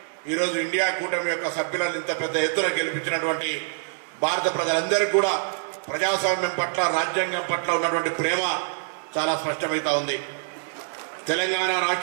ఈరోజు ఇండియా కూటమి యొక్క సభ్యులను ఇంత పెద్ద ఎత్తున గెలిపించినటువంటి భారత ప్రజలందరికీ కూడా ప్రజాస్వామ్యం పట్ల, రాజ్యాంగం పట్ల ఉన్నటువంటి ప్రేమ చాలా స్పష్టమవుతా ఉంది. తెలంగాణ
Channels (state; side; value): silent; left; digital silence